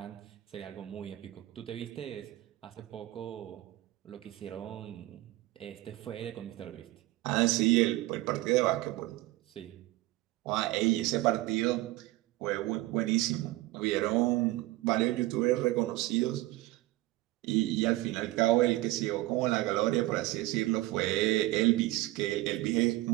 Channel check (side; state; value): left; quieter; 18.2 dB